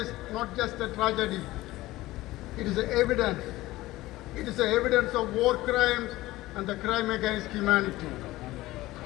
is not just a tragedy. It is evidence. It is evidence of war crimes and the crime against humanity.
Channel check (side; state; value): right; quieter; 17.7 dB